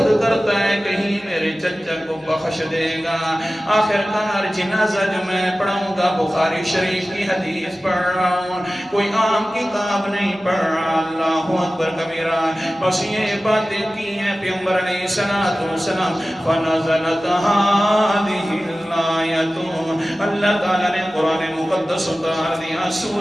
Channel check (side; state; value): both; normal; correlation 0.96